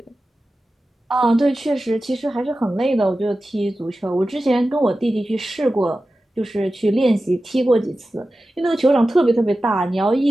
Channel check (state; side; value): normal; both; correlation 0.94